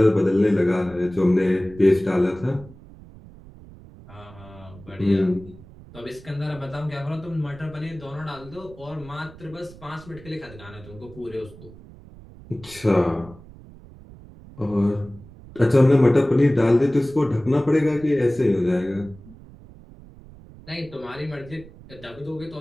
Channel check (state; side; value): noise; right; rumble, 20 dB below the sound